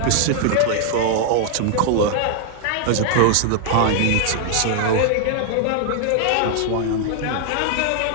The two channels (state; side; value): different; both; correlation 0.00